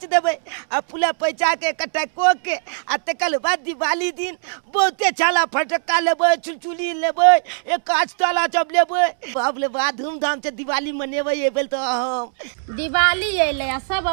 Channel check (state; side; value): silent; left; 65 dB below the other